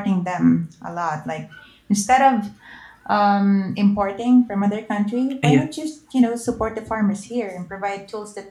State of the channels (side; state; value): both; identical; correlation 1.00